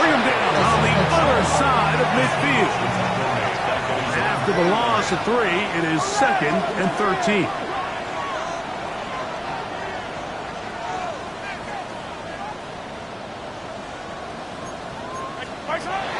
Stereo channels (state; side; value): identical; both; correlation 1.00